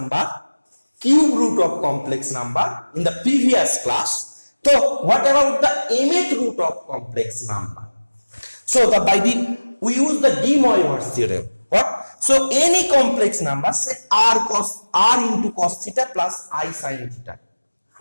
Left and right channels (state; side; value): inverted; both; correlation -1.00